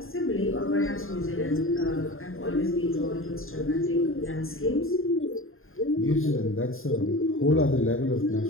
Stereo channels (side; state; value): right; late; 0.60 ms